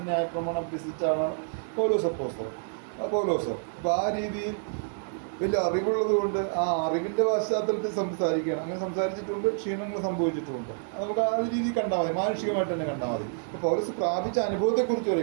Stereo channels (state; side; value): silent; left; digital silence